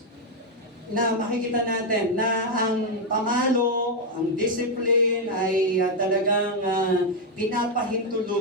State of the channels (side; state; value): both; normal; correlation 0.02